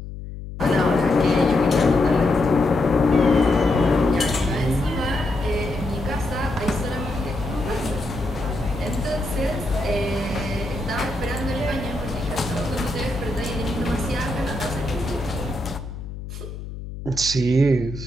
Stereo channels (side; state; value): left; noise; hum, 10 dB below the sound